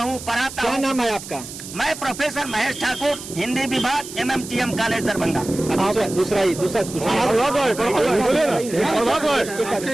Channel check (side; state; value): right; noise; hiss, 12 dB below the sound